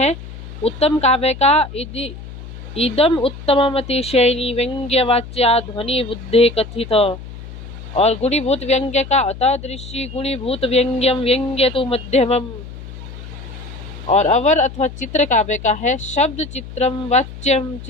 उत्तम काव्य का इदम उत्तममतिशयनी व्यंग्यवाच्या ध्वनि बुद्धे कथित, और गुणीभूत व्यंग्य का अतादृशी गुणीभूत व्यंग्यम व्यंग्य तो मध्यमम। और अवर अथवा चित्र काव्य का है शब्द चित्रम वाच्यम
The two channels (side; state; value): left; noise; hum, 13 dB below the sound